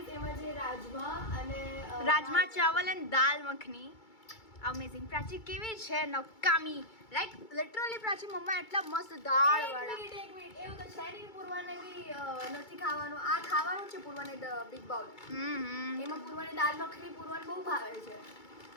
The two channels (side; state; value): right; late; 2.3 ms